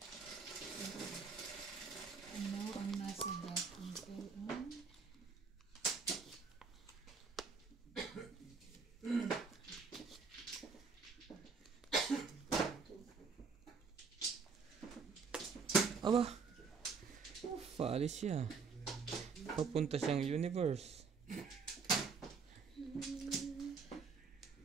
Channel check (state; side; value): quieter; left; 5.2 dB